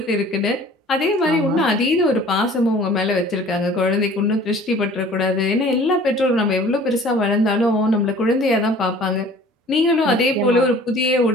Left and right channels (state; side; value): normal; both; correlation 0.49